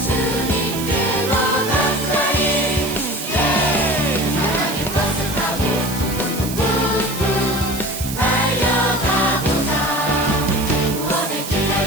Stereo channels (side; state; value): right; noise; hiss, 9 dB below the sound